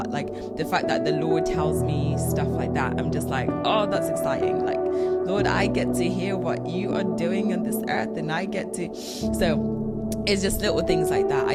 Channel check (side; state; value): both; identical; correlation 1.00